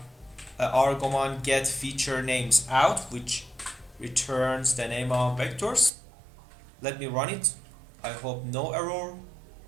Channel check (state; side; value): drops out; left; at 5.9 s